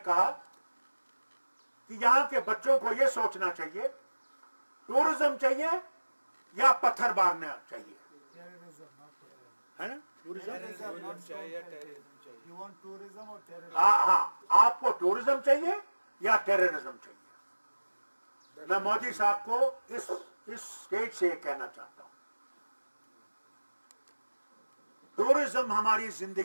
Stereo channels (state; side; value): inverted; both; correlation -1.00